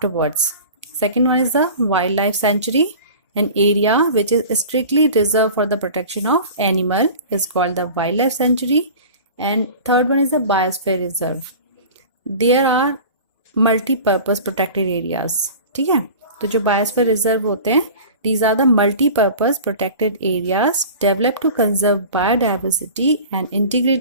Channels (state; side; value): inverted; both; correlation -0.39